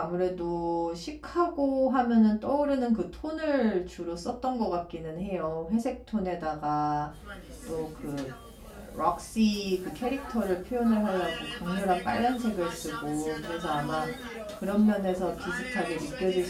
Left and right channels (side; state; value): both; identical; correlation 1.00